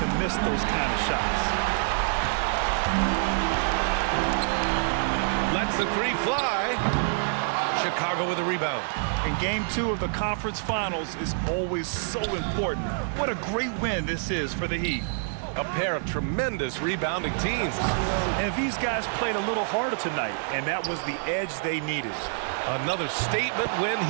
miss those kind of shots. Lets the 3 fly. Chicago with a rebound. And game 2 of the conference finals is always so important. What a great win this is for the Heat. A pair of tremendous rebounding teams. And these guys played a little harder tonight, and that was the edge they needed. Another statement win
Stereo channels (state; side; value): silent; left; digital silence